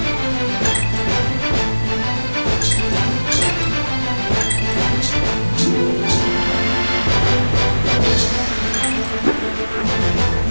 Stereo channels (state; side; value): inverted; both; correlation -1.00